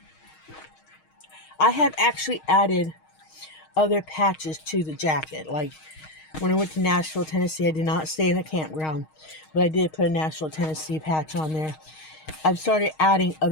I have actually added other patches to the jacket. Like when I went to Nashville, Tennessee, I did not stay in a campground, but I did put a Nashville, Tennessee patch on there. I've started adding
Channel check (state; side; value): late; right; 6.4 ms